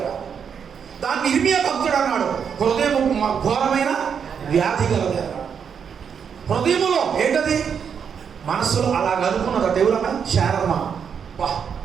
దాన్ని ఇర్మియా భక్తుడు అన్నాడు, హృదయం ఘోరమైన వ్యాధి కలది అన్నాడు. హృదయములో ఏంటది? మనస్సులో అలా కనుక్కున్నది. దేవులమ్మ శారమ్మ వా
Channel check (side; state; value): left; quieter; 7.1 dB